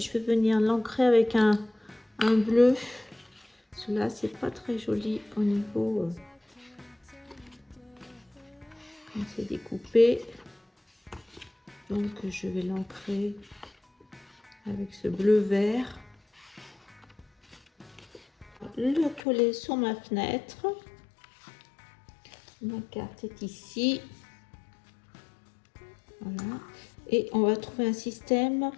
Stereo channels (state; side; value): drops out; right; at 19.2 s